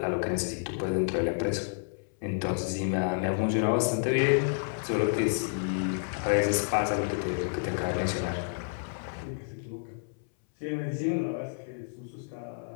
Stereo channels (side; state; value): right; silent; 58 dB below the other